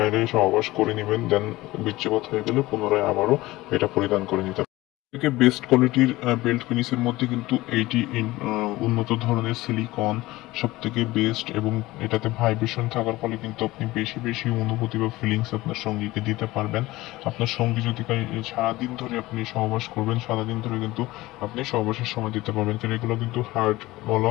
সহবাস করে নেবেন, দেন বীর্যপাত হয়ে গেলে পুনরায় আবারও এটা পরিধান করে নিতে। থেকে বেস্ট কোয়ালিটির বেল্ট পেনিসের মধ্যে কিন্তু এইটি উন্নত ধরনের সিলিকন সব থেকে বেস্ট, এবং এটাতে ভাইব্রেশন থাকার ফলে কিন্তু আপনি বেশি বেশি অনুভূতি বা ফিলিংস আপনার সঙ্গীকে দিতে পারবেন। আপনার সঙ্গী যদি সারাদিন ধরে আপনি সহবাস করবেন, সারাদিন ধরে কিন্তু আপনি সহবাসের সময় দিতে পারবেন। কারণ এগুলো কিন্তু হার্ড বলা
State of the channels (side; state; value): right; quieter; 18.8 dB